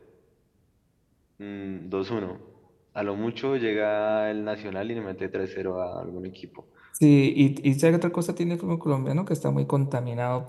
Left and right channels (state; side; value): identical; both; correlation 1.00